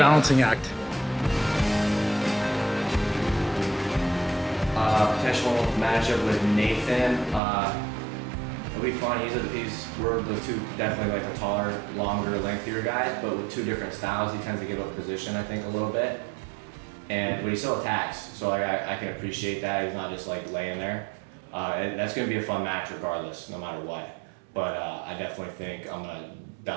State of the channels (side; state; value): left; drops out; at 7.4 s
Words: act. Potential matchup with Nathan. It'll be fun. We're the two definitely like the taller, longer, lengthier guys, but with two different styles. He tends to give up position, I think, a little bit, but he still attacks. So like I can appreciate that. He's not just like laying there. That's gonna be a fun match regardless, no matter what. But I definitely think I'm gonna